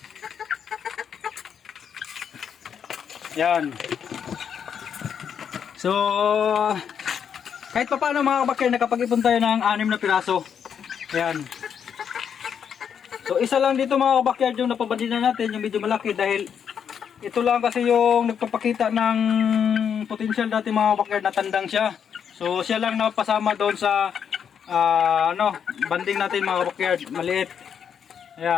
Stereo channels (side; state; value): right; quieter; 7.8 dB